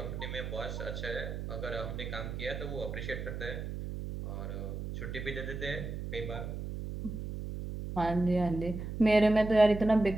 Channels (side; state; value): right; noise; hum, 6 dB below the sound